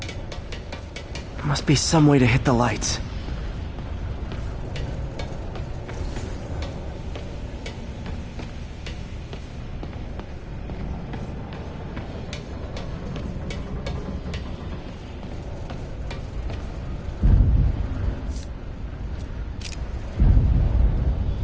Must be some way to hit the lights.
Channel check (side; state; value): both; identical; correlation 1.00